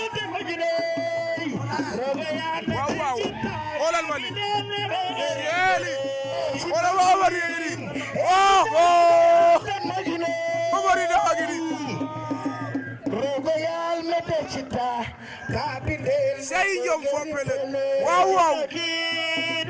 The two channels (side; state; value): both; identical; correlation 1.00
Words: waaw waaw xoolal ma li yeeli xoolal ma Omar yi ni oh oh Omar yi dafa gi ni sey jom fo pele waaw waaw